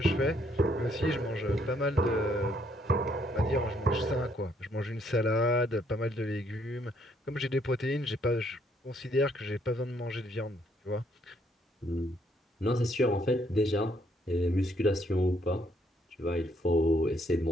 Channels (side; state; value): both; normal; correlation 0.69